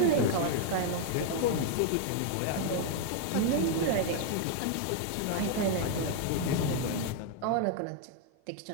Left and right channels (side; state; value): both; different; correlation 0.00